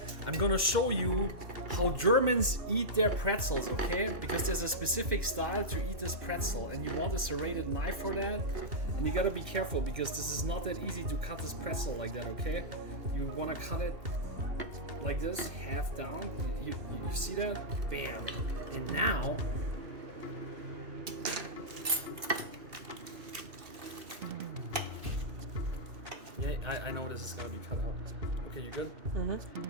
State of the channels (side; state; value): left; late; 2.7 ms